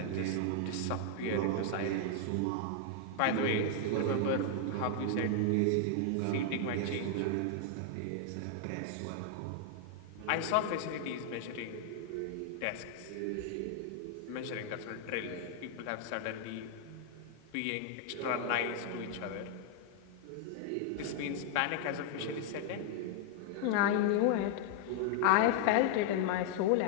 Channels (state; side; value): different; both; correlation 0.00